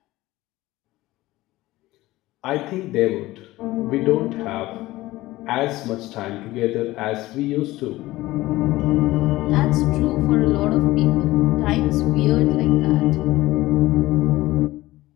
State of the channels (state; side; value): quieter; right; 17.9 dB